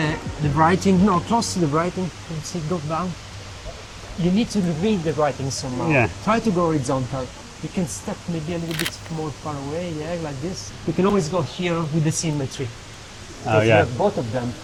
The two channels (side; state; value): both; identical; correlation 1.00